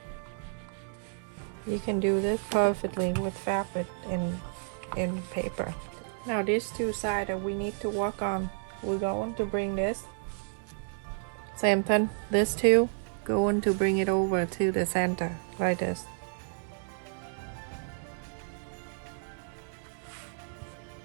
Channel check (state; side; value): silent; left; digital silence